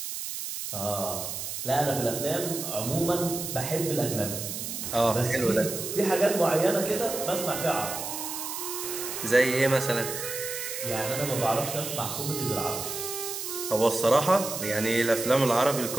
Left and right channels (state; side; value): noise; right; hiss, 6 dB below the sound